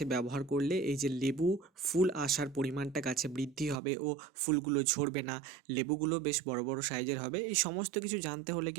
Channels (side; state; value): left; drops out; at 3.8 s